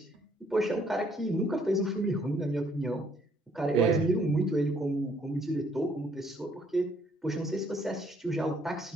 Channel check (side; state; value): both; normal; correlation 0.66